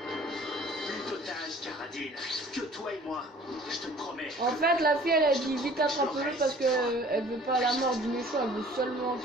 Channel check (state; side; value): normal; both; correlation 0.51